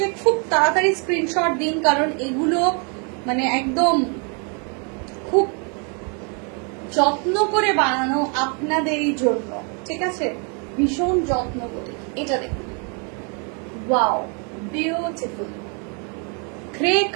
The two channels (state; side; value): quieter; left; 36.9 dB